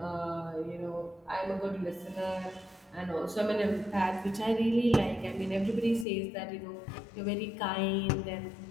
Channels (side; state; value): right; drops out; at 6.1 s